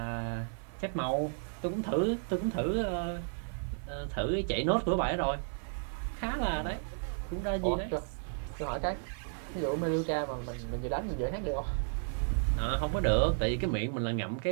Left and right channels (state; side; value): silent; left; 56 dB below the other